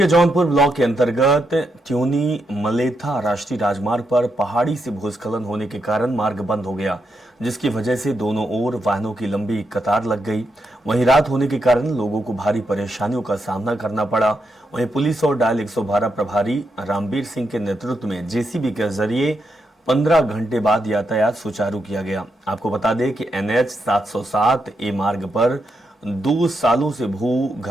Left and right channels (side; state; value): both; normal; correlation 0.83